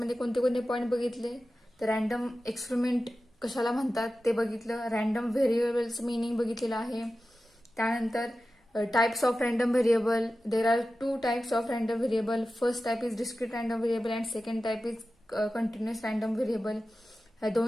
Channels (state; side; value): normal; both; correlation 0.94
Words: कोणते कोणते पॉईंट बघितले, तर रॅन्डम एक्सपेरिमेंट कशाला म्हणतात ते बघितलं, रॅन्डम व्हेरिएबल्स मिनिंग बघितलेलं आहे. त्यानंतर types of random variable. There are 2 types of random variable. First type is discrete random variable and second type is continuous random variable. ह्या